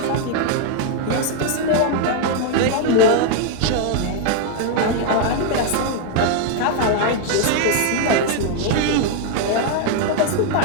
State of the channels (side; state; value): both; different; correlation 0.00